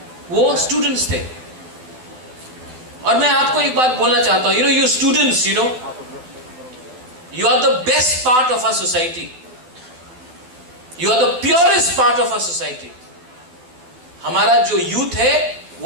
वो स्टूडेंट्स थे। और मैं आपको एक बात बोलना चाहता हूं, you students, you are the best part of our society, you are the purest part of our society. हमारा जो यूथ है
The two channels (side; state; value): left; late; 12 ms